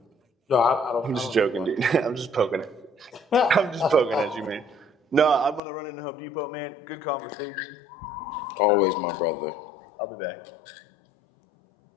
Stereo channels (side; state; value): right; drops out; at 5.6 s